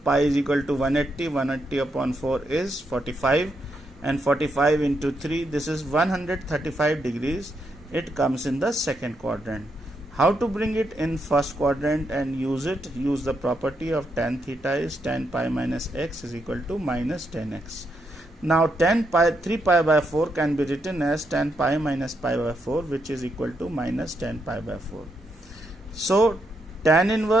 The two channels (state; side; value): normal; both; correlation 0.80